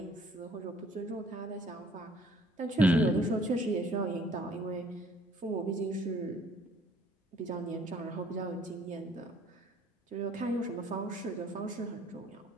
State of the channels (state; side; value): normal; both; correlation 0.58